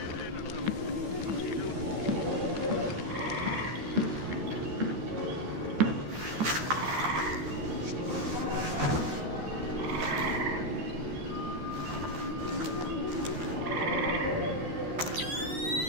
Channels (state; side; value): late; left; 13 ms